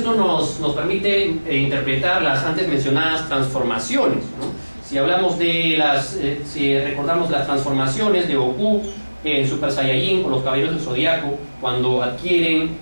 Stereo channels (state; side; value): inverted; both; correlation -1.00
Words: nos permite interpretar las antes mencionadas transformaciones, ¿no? Si recordamos las transformaciones de Goku en Super Saiyajin con los Caballeros del Zodiaco, cuando adquieren